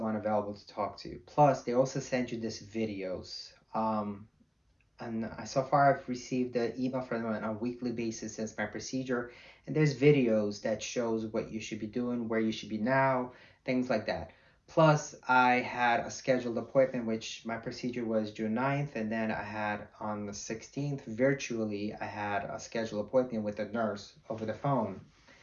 available to talk to. Plus, they also send you this videos. And so far I've received the email from them on a weekly basis since my procedure, and there's videos that shows what you should be doing, where you should be now, things like that. Plus, I had a scheduled appointment, which my procedure was June 9th, and then I had on the 16th, virtually, I had a scheduled appointment with a nurse over the phone.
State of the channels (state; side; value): identical; both; correlation 1.00